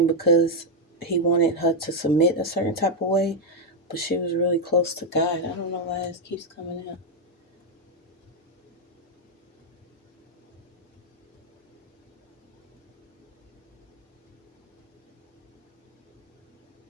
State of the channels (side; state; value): both; normal; correlation 0.02